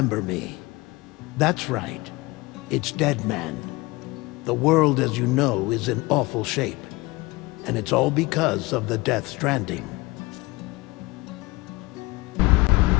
me. That's right. It's Dead Man. The world, as you know, is in awful shape. And it's all because of the Death Stranding.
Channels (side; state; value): right; quieter; 22.3 dB